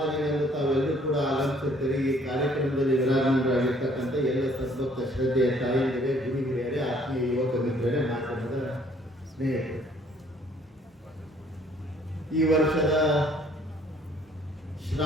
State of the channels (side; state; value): both; normal; correlation 0.61